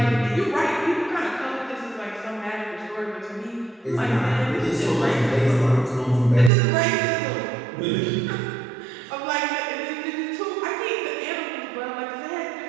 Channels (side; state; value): left; drops out; at 6.5 s